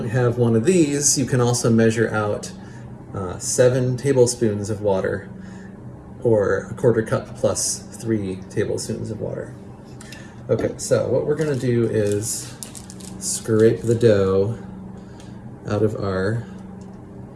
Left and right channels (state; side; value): identical; both; correlation 1.00